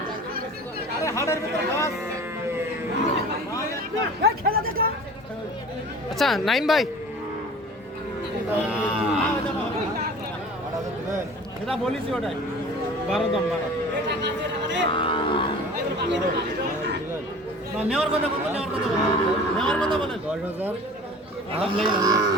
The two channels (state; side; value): normal; both; correlation 0.42